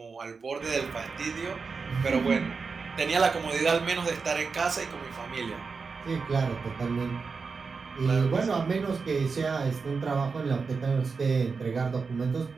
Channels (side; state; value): left; quieter; 4.9 dB